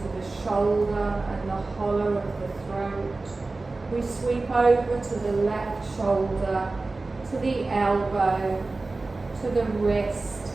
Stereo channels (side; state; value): left; quieter; 3.4 dB